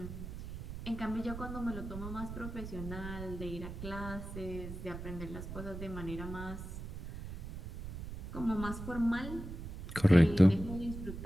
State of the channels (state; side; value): noise; right; rumble, 8 dB below the sound